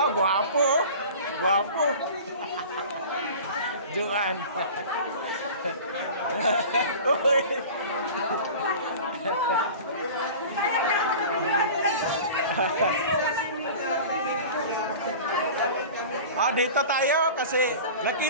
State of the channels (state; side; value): inverted; both; correlation -0.38